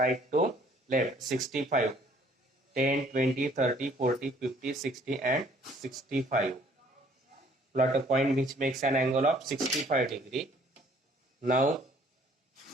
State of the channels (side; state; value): both; normal; correlation 0.59